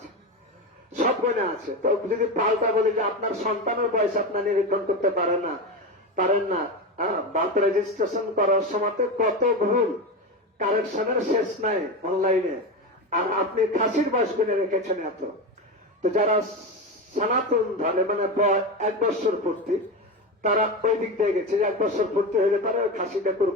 সব গণে আছে। তো যদি পাল্টা বলি যে আপনার সন্তানের বয়স আপনার নিরীক্ষণ করতে পারেন না, বার্থ রেজিস্ট্রেশন করার সময় কত ভুল, কারেকশনের শেষ নাই অনলাইনে, আর আপনি খাসির বয়স গুনে রেখেছেন এত। তো যারা সনাতন ধরে মানে 1 বছর পূর্তি, তারা ওই দিক দিয়ে গেছে যে 1 বছর পূর্তি হলে তারা ওই খাসিটা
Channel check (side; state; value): both; normal; correlation 0.19